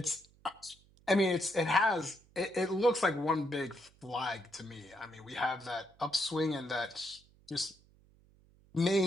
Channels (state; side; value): noise; right; hum, 29 dB below the sound